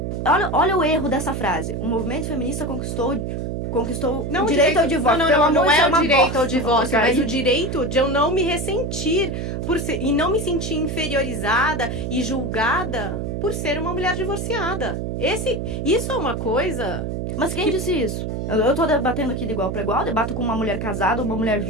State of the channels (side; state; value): right; noise; hum, 3 dB below the sound